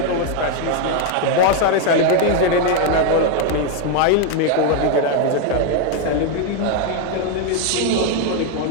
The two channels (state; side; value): different; both; correlation 0.01